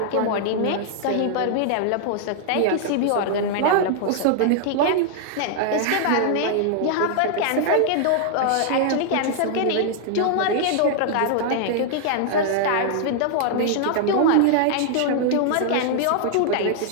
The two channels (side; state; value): both; different; correlation -0.01